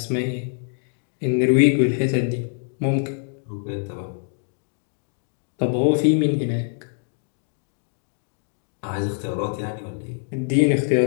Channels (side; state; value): right; silent; 59 dB below the other